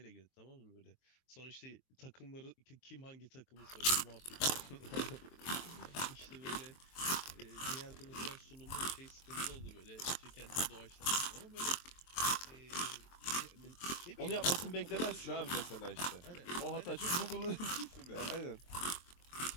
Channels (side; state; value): right; late; 23 ms